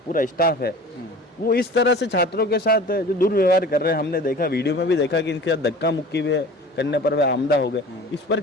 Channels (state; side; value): normal; both; correlation 0.41